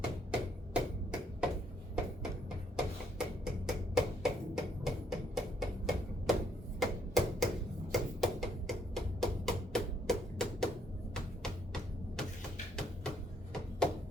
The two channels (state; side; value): normal; both; correlation 0.70